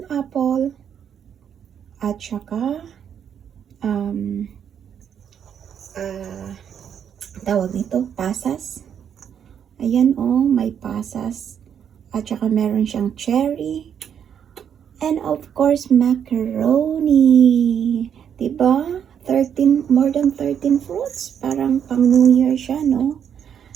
at saka tawag nito, pasas. Ayan oh, may pasas. At saka meron siyang cherry. And of course, macaroni. Diba? More than 13 fruits. Parang pang New Year siya, no?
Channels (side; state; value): left; quieter; 8.4 dB